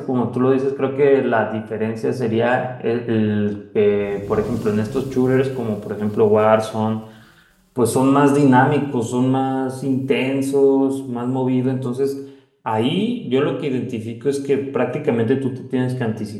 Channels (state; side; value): identical; both; correlation 1.00